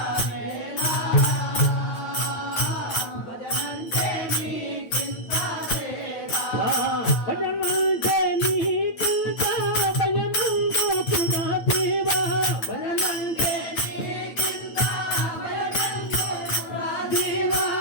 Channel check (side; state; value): right; late; 9.3 ms